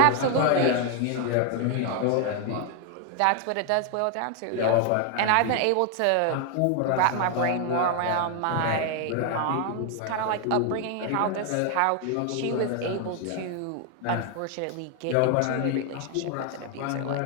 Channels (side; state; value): both; different; correlation 0.01